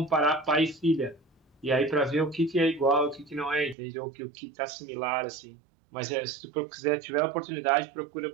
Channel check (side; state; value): left; drops out; at 3.8 s